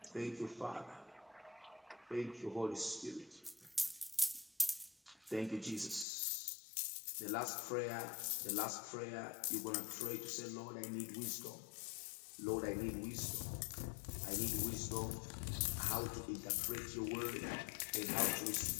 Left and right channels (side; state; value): right; drops out; at 6.1 s